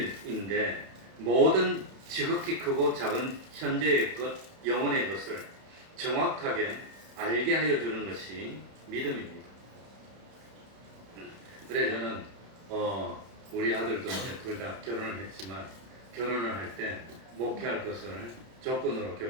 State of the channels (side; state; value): left; late; 31 ms